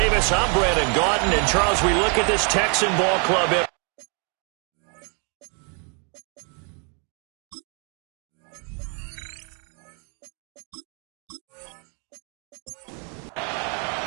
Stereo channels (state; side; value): quieter; left; 38.7 dB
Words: I'm Brandon Gaudin. And, Charles, we look at this Texan ball club.